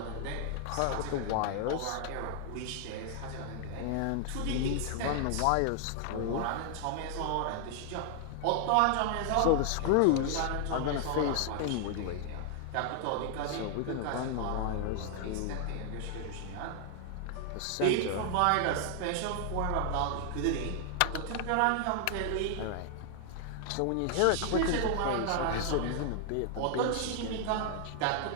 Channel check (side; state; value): both; different; correlation 0.00